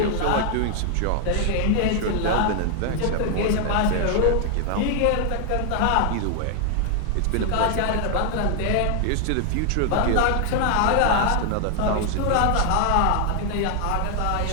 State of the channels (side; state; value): both; different; correlation 0.00